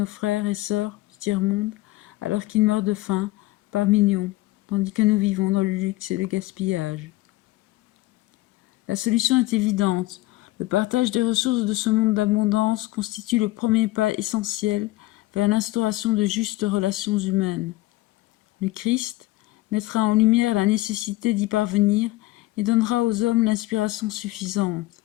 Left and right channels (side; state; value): right; quieter; 18.6 dB